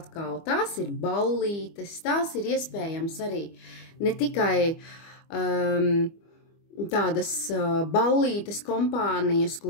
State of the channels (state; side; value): late; right; 25 ms